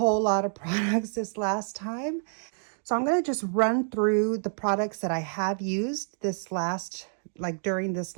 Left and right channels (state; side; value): silent; left; digital silence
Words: lot of products this last time. So I'm going to just run through the products that I have used during this